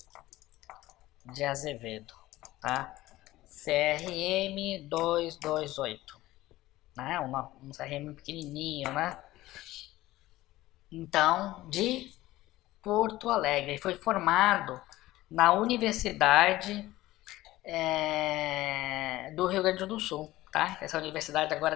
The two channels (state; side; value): quieter; right; 16.8 dB